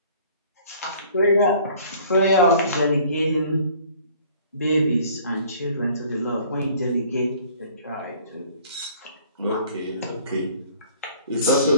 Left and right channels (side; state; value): both; inverted; correlation -0.53